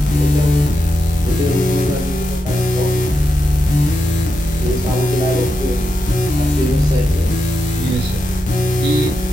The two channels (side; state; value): both; normal; correlation 0.87